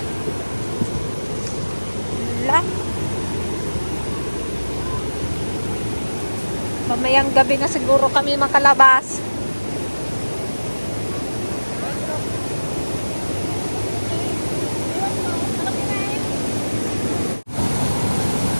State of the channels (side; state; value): both; inverted; correlation -1.00